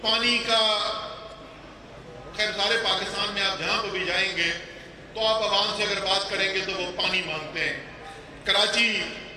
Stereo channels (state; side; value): identical; both; correlation 1.00